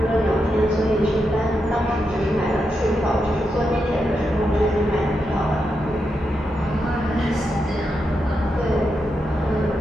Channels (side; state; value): both; normal; correlation 0.85